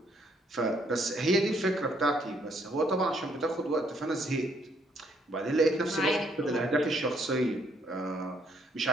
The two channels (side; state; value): both; normal; correlation 0.69